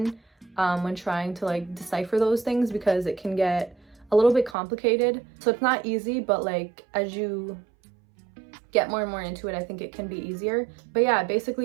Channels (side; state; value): left; drops out; at 4.5 s